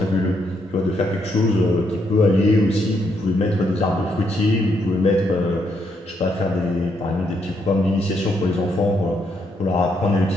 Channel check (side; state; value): both; normal; correlation 0.76